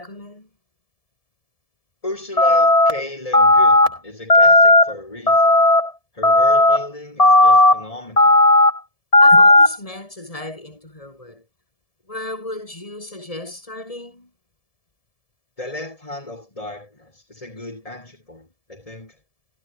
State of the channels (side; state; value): right; late; 1.7 ms